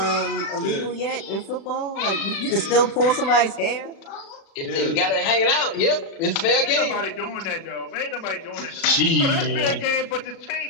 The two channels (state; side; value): late; right; 36 ms